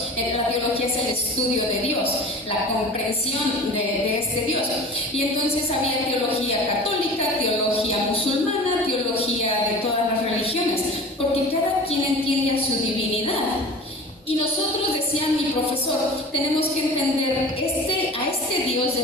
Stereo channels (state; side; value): normal; both; correlation 0.38